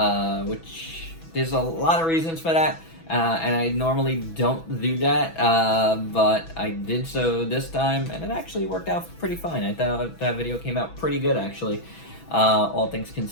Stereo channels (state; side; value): late; right; 6.1 ms